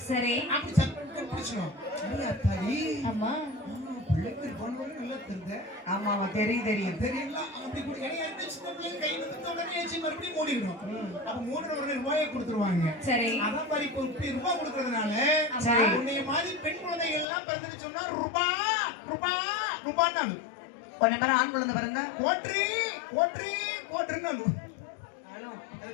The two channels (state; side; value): drops out; right; at 17.2 s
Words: சரி. அப்படி சத்தம் பிடிச்சணும். அத்தாடி. அம்மா. பிள்ளைக்கு பொண்ணு நல்லா தெரியுது. ஆமா ஆமா தெரியும் தெரியல அப்படி கூட என்ன சின்ன பிள்ளைங்க கை நிமித்த உடனே ஏச்சி மறுபடியும் மூடிடும். அப்ப மூடுற உடனே ரூபாயை கொடுத்துருவாங்க. சரி. அதான் மாதிரி இப்போ இப்படி ரூபாய் கொடுக்கறதுனால உன்னைய மாதிரி பெண் குழந்தைகள் எல்லாம் பிறந்துட்டு சொன்னா ரூபான்னு கொஞ்ச பேர் ஆண் குழந்தை பிறந்தா கோட்டுன்னு அது